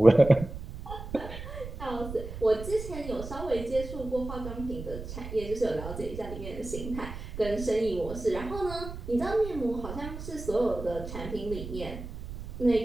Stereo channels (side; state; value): right; noise; rumble, 10 dB below the sound